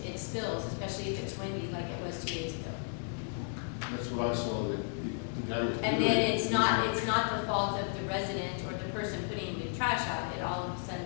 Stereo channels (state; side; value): silent; right; 55 dB below the other